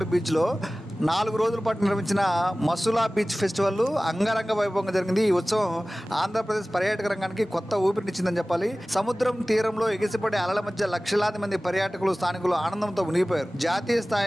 బీచ్లో 4 రోజుల పాటు నిర్వహించిన మసులా బీచ్ ఫెస్టివల్ అంగరంగ వైభవంగా జరిగింది. ఈ ఉత్సవం ఆంధ్రప్రదేశ్ పర్యాటక రంగానికి కొత్త ఊపిరినిచ్చిందని చెప్పాలి. సముద్రం తీరంలో ఎగిసిపడే అలల మధ్య లక్షలాది మంది పర్యాటకులు, స్థానికులు ఆనందంతో మునిగిపోయారు. జాతీయ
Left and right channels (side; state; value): both; normal; correlation 0.98